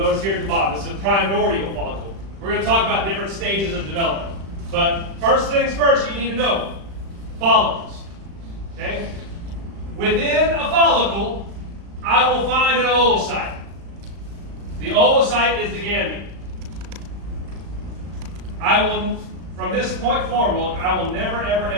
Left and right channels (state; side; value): late; left; 36 ms